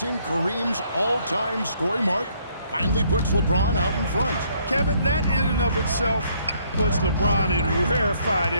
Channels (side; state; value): both; inverted; correlation -0.67